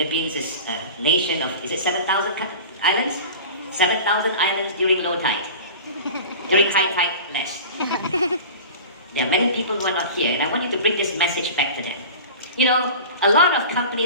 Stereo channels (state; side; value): inverted; both; correlation -0.36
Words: is a nation of, is it 7,000 islands? 7,000 islands during low tide. During high tide, less. There are many people who are not here, and I want you to bring this message back to them. You know, a lot of